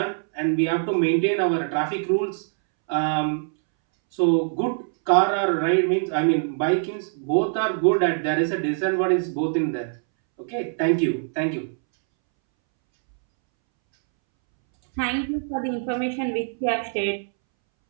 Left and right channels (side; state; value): left; silent; 63 dB below the other